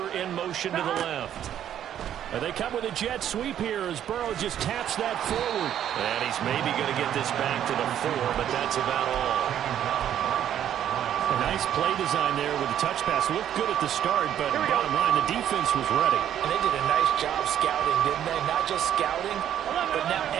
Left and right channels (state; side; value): quieter; left; 10.4 dB